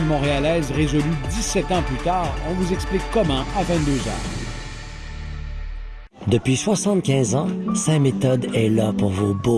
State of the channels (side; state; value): both; identical; correlation 1.00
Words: Montréalaise résolu 17 ans plus tard, on vous explique comment à 22 ans. Depuis 75 ans, Saint-Méthode est là pour vos